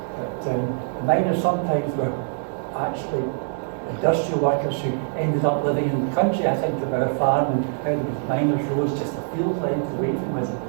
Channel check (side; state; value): left; silent; digital silence